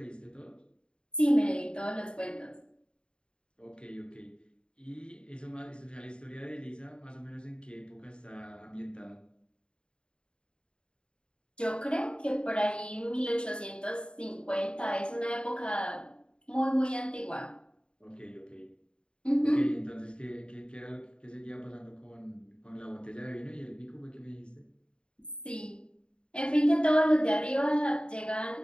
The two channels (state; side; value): late; right; 0.053 ms